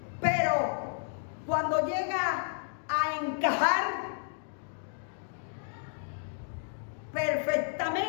pero cuando llega a encajar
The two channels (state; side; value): silent; right; digital silence